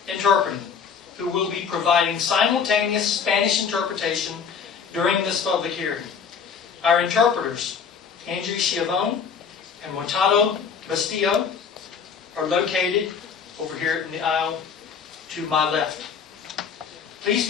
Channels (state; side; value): quieter; right; 6.5 dB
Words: Interpreting, who will be providing simultaneous Spanish interpretation during this public hearing. Our interpreters, Andrew Chiavone and Mortado Bastillo, are located over here in the aisle to my left. Please